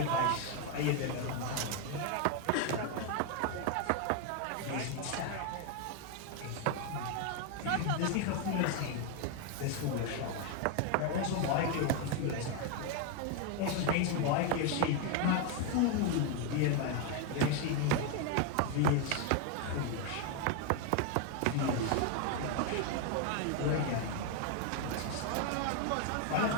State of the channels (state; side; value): different; both; correlation 0.01